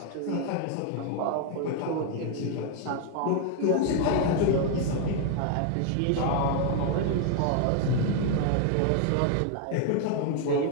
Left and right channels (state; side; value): different; both; correlation 0.00